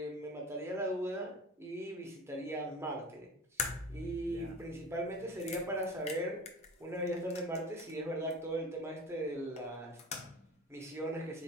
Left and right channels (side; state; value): both; normal; correlation 0.35